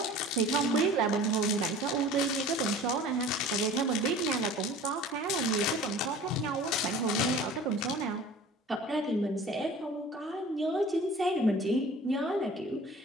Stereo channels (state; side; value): normal; both; correlation 0.43